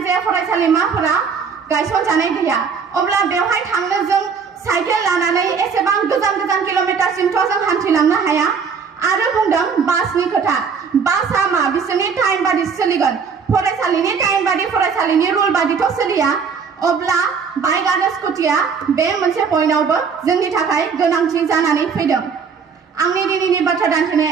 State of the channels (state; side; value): quieter; left; 6.0 dB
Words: फरायसालिमाफोरा गायसनजानाय गैया। अब्ला बेवहाय थांनो जों साइकेल लानानै एसेबां गोजान गोजान किल'मिटारसिमथ' जों हान्थिलांनो हाया। आरो बुंदों बासनि खोथा। बासआ मा? बिसोरनि टाइम बादि सोलिगोन। फरायसालिनि टाइम बादि फरायसालिनि रुल बादिथ' सोलिया। अब्ला बाइक आरो स्कुटिया बे मोनसे पइन्टआवबो जोंनि थाखाय गोनांथि जानानै फैदों। आंनि दिनैनि बाथ्रा